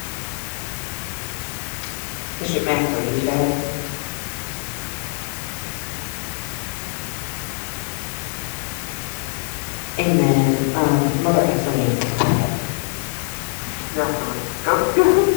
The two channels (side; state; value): right; silent; digital silence